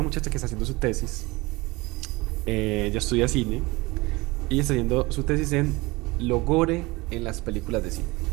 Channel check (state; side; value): quieter; left; 22.7 dB